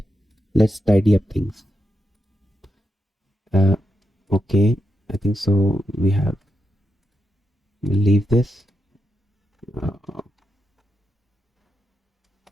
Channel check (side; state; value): both; normal; correlation 0.85